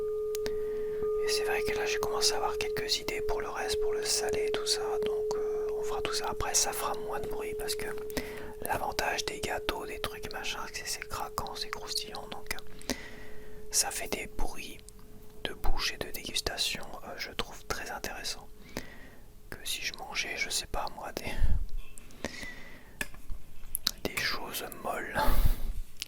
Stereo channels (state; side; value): identical; both; correlation 1.00